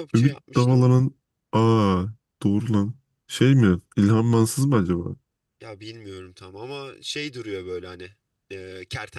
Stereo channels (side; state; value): both; identical; correlation 1.00